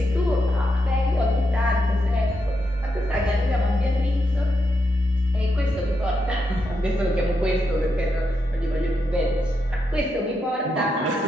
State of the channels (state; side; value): normal; both; correlation 0.83